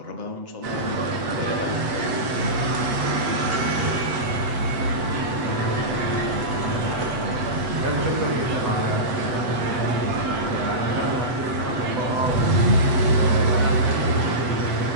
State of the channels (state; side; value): late; left; 8.0 ms